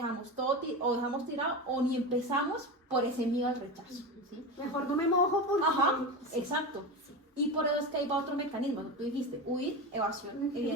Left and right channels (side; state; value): both; normal; correlation 0.22